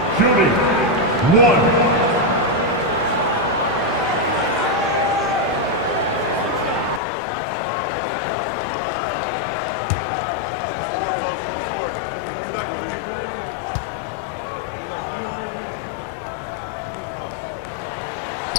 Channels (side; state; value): right; drops out; at 7.0 s